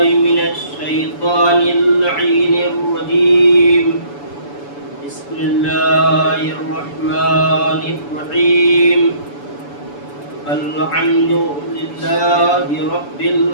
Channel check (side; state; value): right; late; 7.0 ms